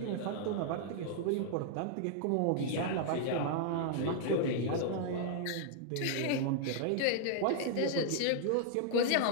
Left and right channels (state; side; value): different; both; correlation -0.01